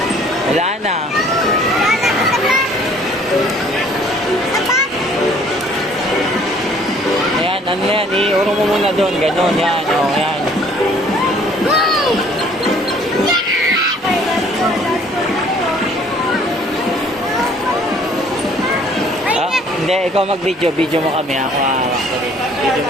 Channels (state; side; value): normal; both; correlation 0.57